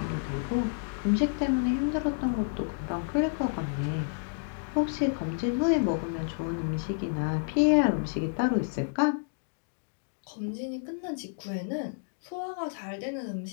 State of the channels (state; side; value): silent; right; digital silence